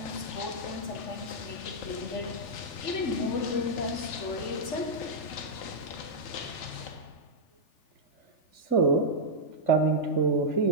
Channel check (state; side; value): late; right; 3.4 ms